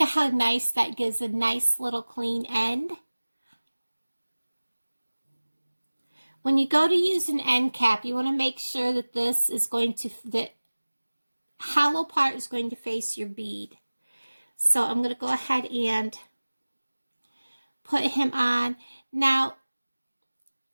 how nice that gives a nice little clean end. When you go to use an end cap, you want to make sure that this is going to, the hollow part is going to face your bead. So I'm going to go ahead and put him on. Now,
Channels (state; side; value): inverted; both; correlation -1.00